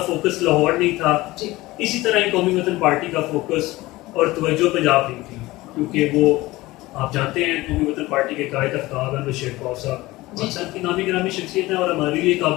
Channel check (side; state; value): right; quieter; 19.2 dB